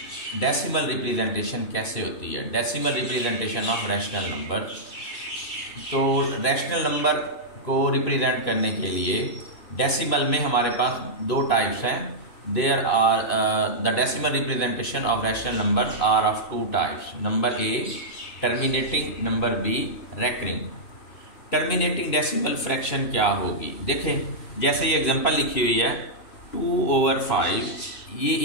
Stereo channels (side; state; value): right; late; 2.9 ms